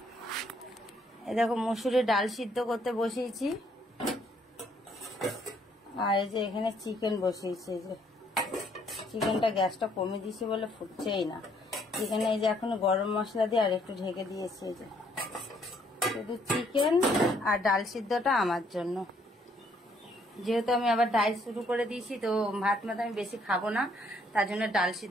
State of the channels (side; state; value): both; normal; correlation 0.67